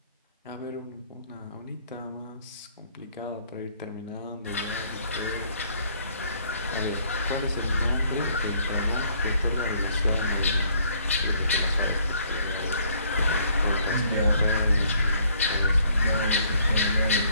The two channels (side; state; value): both; inverted; correlation -0.64